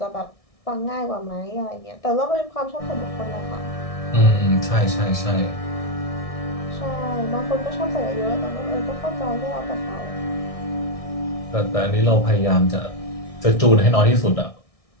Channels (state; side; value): late; right; 1.6 ms